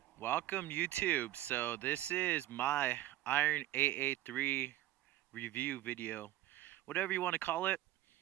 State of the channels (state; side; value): quieter; left; 14.8 dB